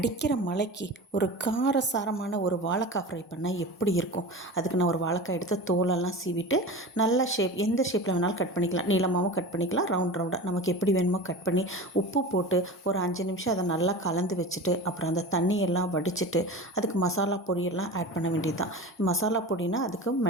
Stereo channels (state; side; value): normal; both; correlation 0.32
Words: மழைக்கு ஒரு காரசாரமான ஒரு வாழைக்காய் ஃப்ரை பண்ணால் எப்படி இருக்கும். அதுக்கு நான் ஒரு வாழைக்காய் எடுத்து தோலெல்லாம் சீவிட்டு நல்ல ஷேப் எந்த ஷேப்பில் வேணாலும் கட் பண்ணிக்கலாம். நீளமாகவும் கட் பண்ணிக்கலாம், ரவுண்டாக நமக்கு எப்படி வேணுமோ கட் பண்ணி உப்பு போட்டு ஒரு 5 நிமிஷம் அதை நல்லா கலந்து வச்சுட்டு அப்புறம் அந்த தண்ணியெல்லாம் வடிச்சிட்டு அதுக்கு மசாலா பொடியெல்லாம் ஆட் பண்ண வேண்டியது தான். மசாலா பொடினா அதுக்கு